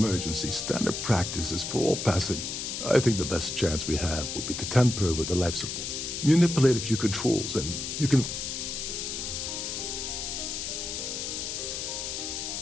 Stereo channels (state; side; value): noise; left; hiss, 4 dB below the sound